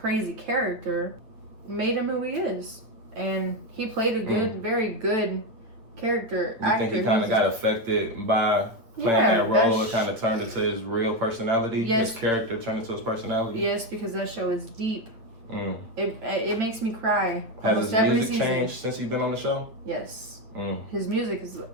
character made him who he is. And he played a good, very good character. You think he kind of got affected by playing that role? It kind of turned into his real personality? Yes. His character turned into his personality? Yes, because that show is deep. It makes me cry. Has his music changed since he's been on the show? Yes. His music is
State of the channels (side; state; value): left; late; 8.8 ms